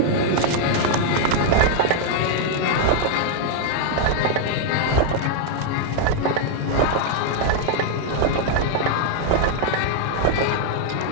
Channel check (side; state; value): both; different; correlation 0.00